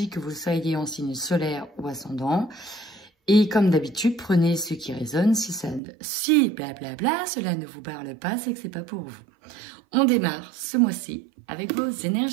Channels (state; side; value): drops out; left; at 5.8 s